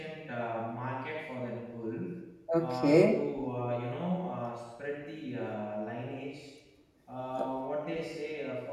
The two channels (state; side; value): identical; both; correlation 1.00